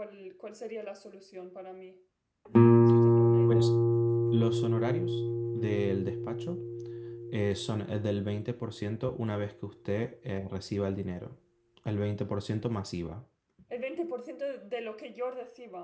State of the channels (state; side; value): identical; both; correlation 1.00